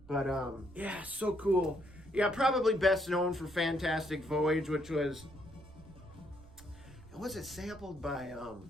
But, yeah, so cool. Yeah, probably best known for Fantastic Voyage, which was it sampled by,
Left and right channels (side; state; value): right; noise; rumble, 20 dB below the sound